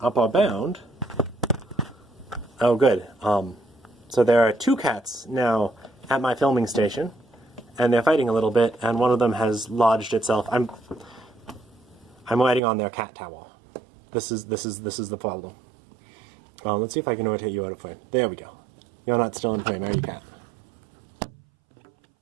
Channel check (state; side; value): drops out; left; at 12.6 s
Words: upper bound. Oh, good. So there are two cats now at my filming station, and they're fighting a little bit, and one of them has lodged itself. I'm riding on their cat tower. This is the problem. Let's see if I can rotate you out of frame. There we go. You're not still in frame, are you, cat?